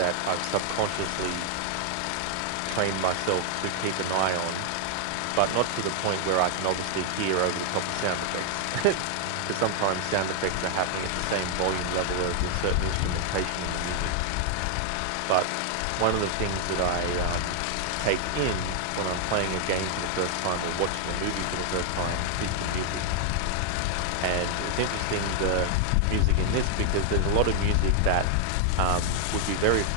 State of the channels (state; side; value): different; both; correlation 0.00